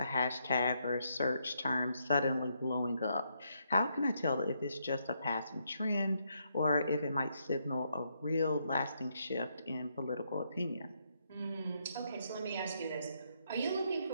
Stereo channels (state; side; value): inverted; both; correlation -0.77